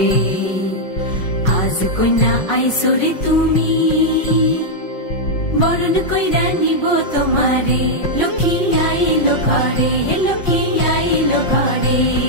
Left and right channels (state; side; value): late; right; 5.5 ms